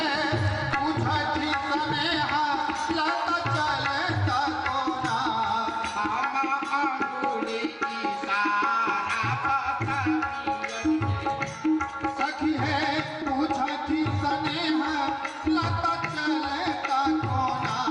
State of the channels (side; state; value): both; identical; correlation 1.00